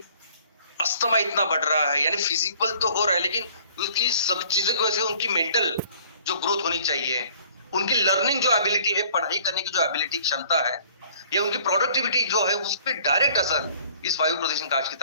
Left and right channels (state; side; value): inverted; both; correlation -0.55